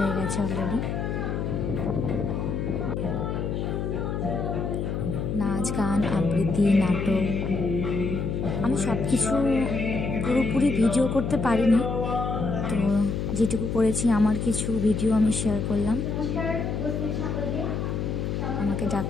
গেছে অলরেডি। নাচ, গান, আবৃত্তি, নাটক, আমি সব কিছু পুরোপুরি ভিডিও করতে পারিনি, তো যেটুকু করেছি আমার কিছু ভিডিও আমি শেয়ার করলাম। আমাকে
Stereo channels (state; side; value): noise; left; hum, 2 dB below the sound